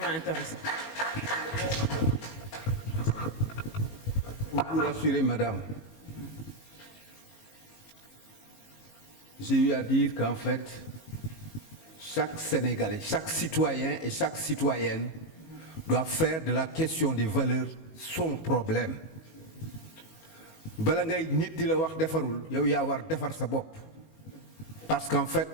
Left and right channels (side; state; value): right; late; 19 ms